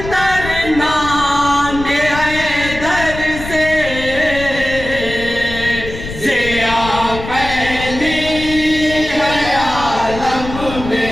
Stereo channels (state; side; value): noise; left; rumble, 10 dB below the sound